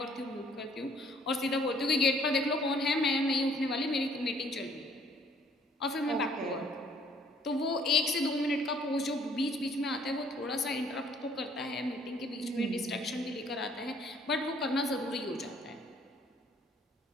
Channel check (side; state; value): both; normal; correlation 0.61